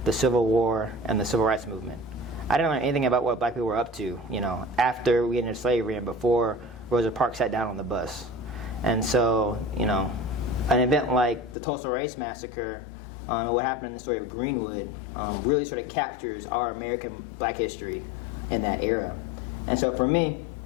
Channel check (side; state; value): right; drops out; at 11.6 s